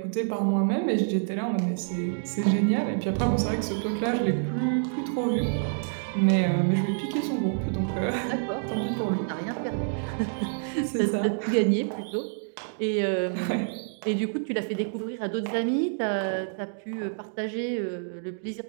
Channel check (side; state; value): left; silent; digital silence